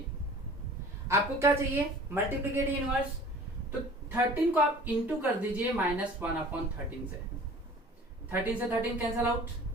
आपको क्या चाहिए, मल्टीप्लिकेटिव इनवर्स। तो 13 को आप इंटू कर दीजिए -1/13 से। 13 से 13 cancel out,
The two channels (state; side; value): normal; both; correlation 0.45